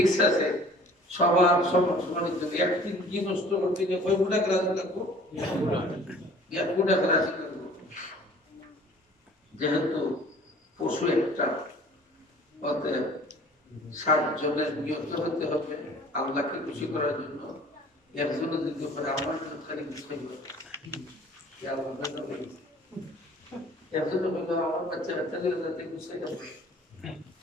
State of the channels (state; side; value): normal; both; correlation 0.49